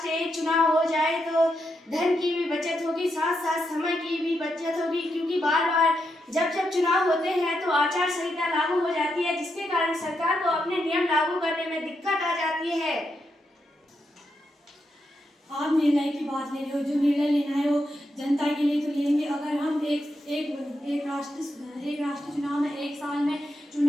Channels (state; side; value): normal; both; correlation 0.83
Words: एक चुनाव हो जाए तो धन की भी बचत होगी, साथ साथ समय की भी बचत होगी, क्योंकि बार बार जब चुनाव होते हैं तो आचार संहिता लागू हो जाती है, जिसके कारण सरकार को अपने नियम लागू करने में दिक्कत आ जाती है। आप निर्णय की बात ले रहे हो, जो निर्णय लेना है वो जनता के लिए तो लेंगे। अगर हम एक राष्ट्र चुनाव में एक साल में